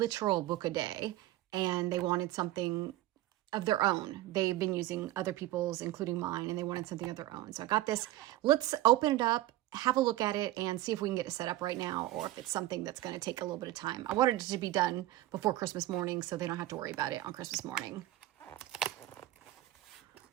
book a day and they wanted something of their own. They've been using other people's, including mine, and they wanted something of their own. So I got this. Let's open it up, have a look at it, and see if we can get it set up right now or if it's something that's going to take a little bit of time. I wanted it to be done before Christmas morning so they don't have to worry about it on Christmas morning.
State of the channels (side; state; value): left; quieter; 15.8 dB